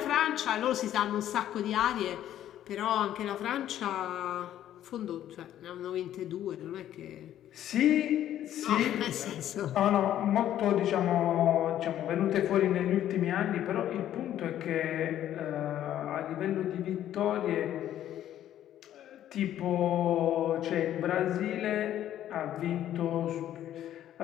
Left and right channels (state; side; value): quieter; right; 11.7 dB